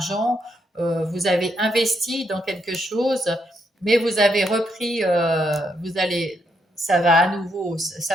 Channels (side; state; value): both; normal; correlation 0.78